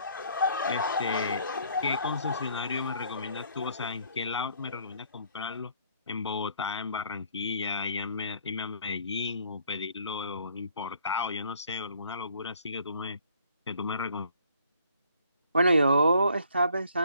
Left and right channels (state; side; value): inverted; both; correlation -0.61